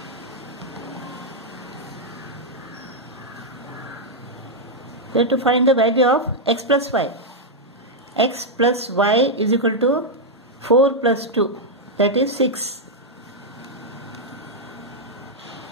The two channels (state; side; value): normal; both; correlation -0.02